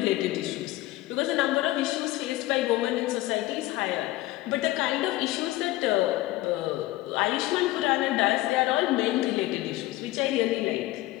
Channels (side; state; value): right; quieter; 17.4 dB